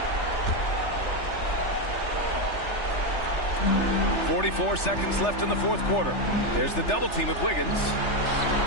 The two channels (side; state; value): right; late; 3.3 ms